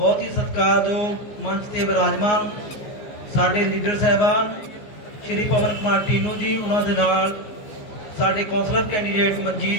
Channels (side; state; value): right; late; 14 ms